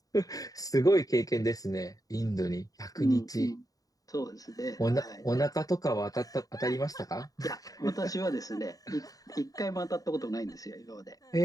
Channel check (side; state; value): right; late; 0.18 ms